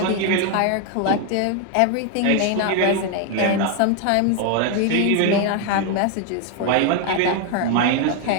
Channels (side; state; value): both; different; correlation 0.01